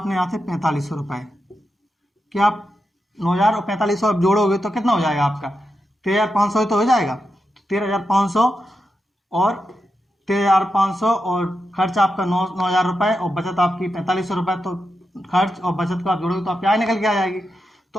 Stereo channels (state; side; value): normal; both; correlation 0.87